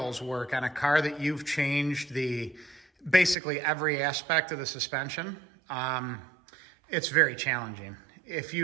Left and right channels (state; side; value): drops out; left; at 3.4 s